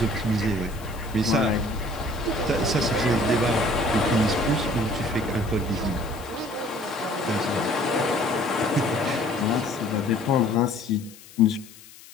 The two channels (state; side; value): noise; left; hiss, 20 dB below the sound